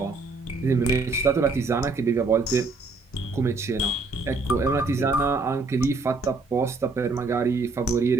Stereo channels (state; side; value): quieter; left; 3.8 dB